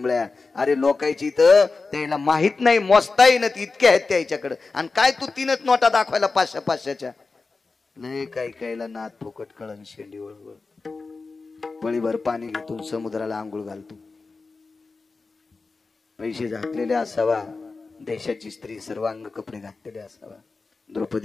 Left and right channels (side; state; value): right; quieter; 4.0 dB